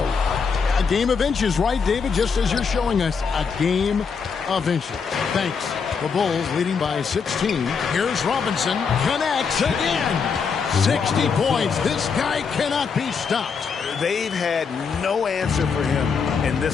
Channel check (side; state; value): right; quieter; 5.8 dB